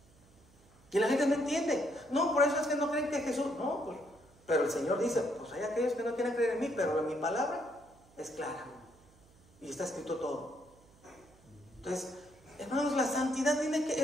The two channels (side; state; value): right; noise; hum, 28 dB below the sound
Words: Y la gente no entiende. No, por eso es que no creen que Jesús... No, pues, pero el Señor dice, pues hay aquellos que no quieren creer en mí, pero en mi palabra es clara. Y está escrito todo. Entonces, hermanos, la santidad